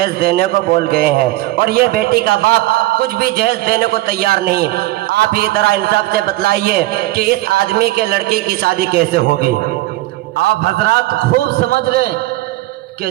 دینے کو بول گئے ہیں، اور یہ بیٹی کا باپ کچھ بھی جہیز دینے کو تیار نہیں۔ آپ ہی طرح انصاف سے بتلائیے کہ اس آدمی کے لڑکی کی شادی کیسے ہوگی؟ آپ حضرات خوب سمجھ لیں کہ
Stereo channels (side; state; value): left; quieter; 17.5 dB